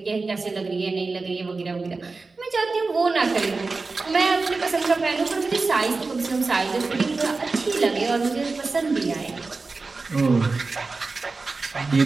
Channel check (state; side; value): quieter; left; 3.9 dB